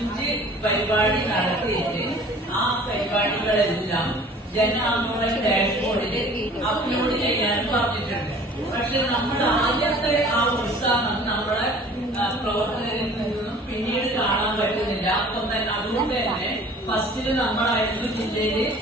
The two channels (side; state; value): both; normal; correlation 0.48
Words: പരിപാടി നടത്തിയിട്ട് ആ പരിപാടികളെല്ലാം ജനാന്തോളൻ ഡാഷ്ബോർഡിൽ അപ്ലോഡ് ചെയ്യാൻ പറഞ്ഞിട്ടുണ്ട്. പക്ഷെ നമ്മൾ ആദ്യത്തെ ആ ഉത്സാഹം നമ്മളെ പ്രവർത്തകരിൽ നിന്നും പിന്നീട് കാണാൻ പറ്റുന്നില്ല. അതുകൊണ്ട് തന്നെ ഫസ്റ്റില് നമ്മളായിരുന്നു ജില്ലയില്,